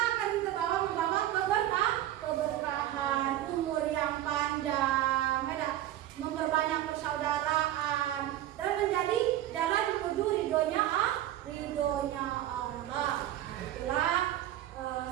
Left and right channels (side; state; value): left; quieter; 13.1 dB